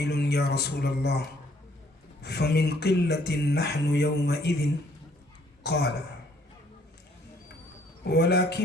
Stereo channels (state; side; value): normal; both; correlation 0.63